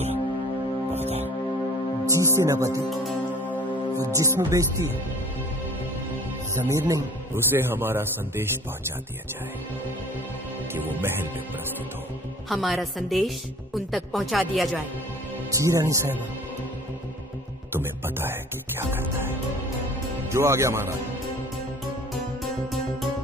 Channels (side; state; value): both; normal; correlation 0.48